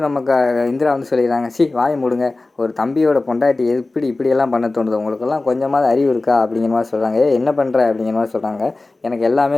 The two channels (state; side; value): quieter; right; 3.2 dB